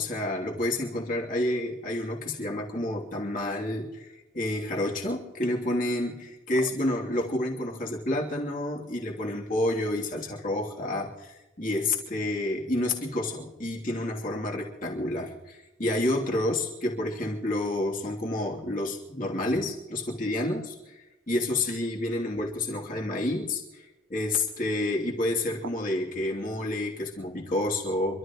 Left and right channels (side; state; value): both; normal; correlation 0.58